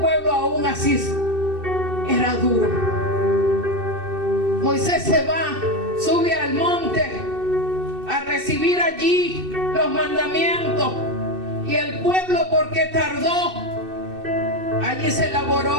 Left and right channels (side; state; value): left; late; 2.6 ms